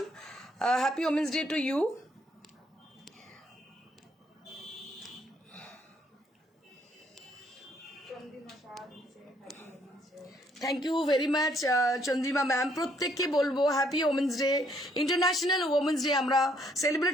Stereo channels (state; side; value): normal; both; correlation 0.68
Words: happy women's day to you. Thank you very much Chandrima ma'am. প্রত্যেককে বলবো happy women's day, international women's day আমরা